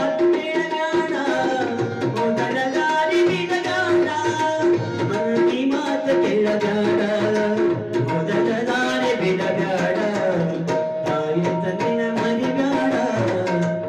ಕೇಳಬೇಡ, ಮೊದಲ ದಾರಿ ಬಿಡಬೇಡ. ಮಂದಿ ಮಾತು ಕೇಳಬೇಡ, ಮೊದಲ ದಾರಿ ಬಿಡಬೇಡ. ಮರಿಬ್ಯಾಡ ತಾಯಿ ತಂದಿನ ಮರಿಬ್ಯಾಡ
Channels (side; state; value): both; identical; correlation 1.00